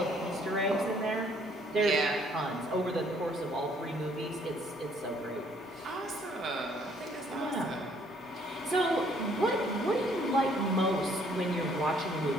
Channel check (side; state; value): both; normal; correlation 0.63